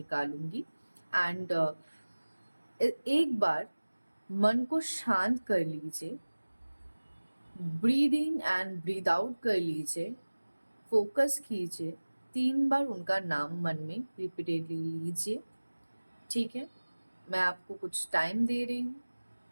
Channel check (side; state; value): both; inverted; correlation -1.00